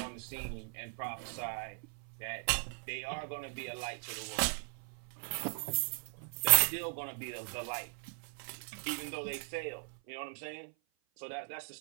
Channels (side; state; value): left; silent; 52 dB below the other